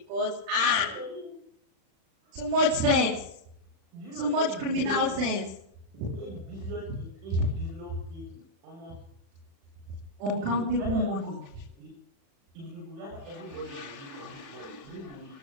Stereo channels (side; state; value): left; late; 36 ms